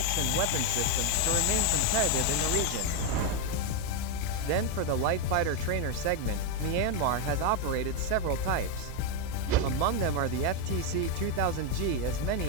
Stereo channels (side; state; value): both; different; correlation 0.02